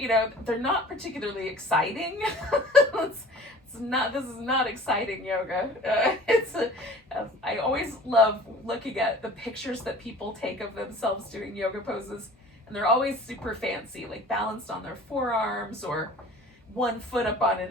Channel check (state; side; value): normal; both; correlation 0.45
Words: they're not particularly exciting. This is not exciting yoga. I always love looking at the pictures that people take of themselves doing yoga poses, and they're always super fancy, like balanced on their forearms or one foot up on